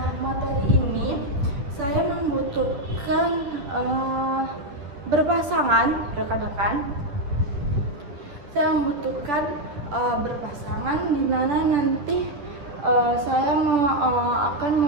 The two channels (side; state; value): left; late; 10 ms